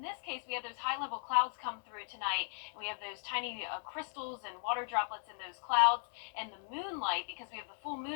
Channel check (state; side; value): silent; right; 53 dB below the other